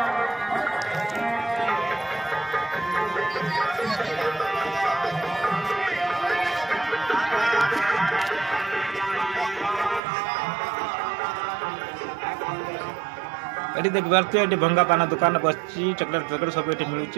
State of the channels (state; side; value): drops out; left; at 10.0 s